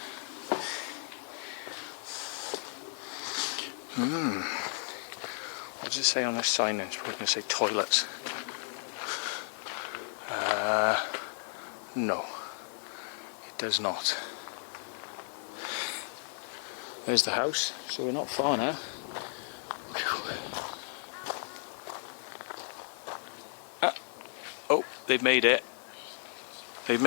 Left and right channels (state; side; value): silent; right; 55 dB below the other